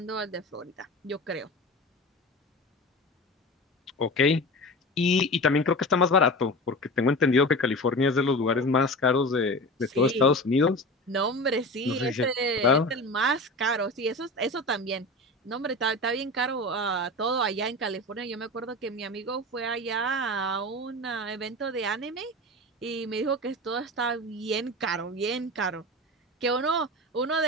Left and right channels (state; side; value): normal; both; correlation 0.30